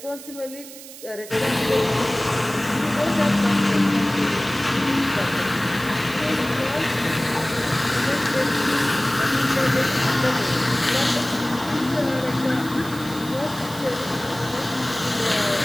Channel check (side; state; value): right; noise; hiss, 15 dB below the sound